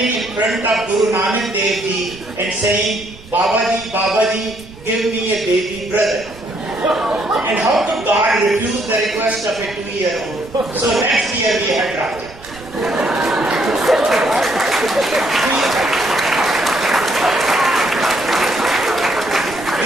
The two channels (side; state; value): right; noise; rumble, 20 dB below the sound